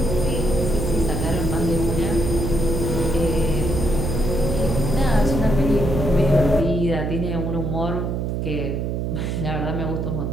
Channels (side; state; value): right; noise; hum, 1 dB below the sound